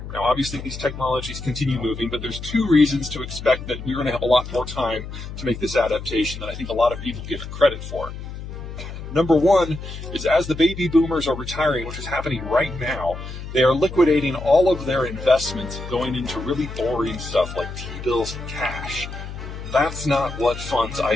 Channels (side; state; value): left; noise; hum, 10 dB below the sound